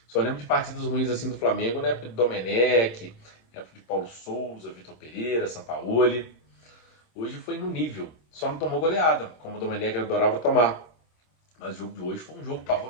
Só lembro de partidas ruins assim do Flamengo na época de Domenech, na época de Paulo Souza, Vitor Pereira, Sampaoli. Hoje foi no nível, só não tomou goleada, como o Domenech adorava tomar. Mas o jogo de hoje foi um jogo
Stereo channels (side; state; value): right; late; 26 ms